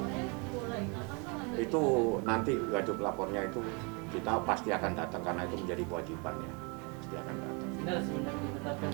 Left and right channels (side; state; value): left; quieter; 32.5 dB